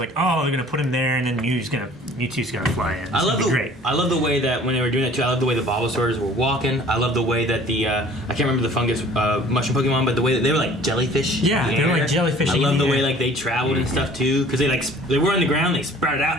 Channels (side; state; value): both; normal; correlation 0.50